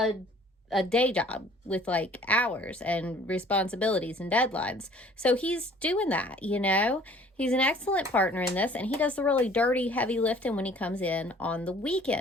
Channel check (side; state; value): both; normal; correlation 0.53